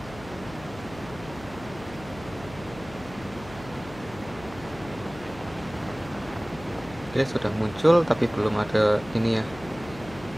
Oke, sudah muncul tapi belum ada ini ya.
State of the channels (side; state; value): left; noise; hum, 16 dB below the sound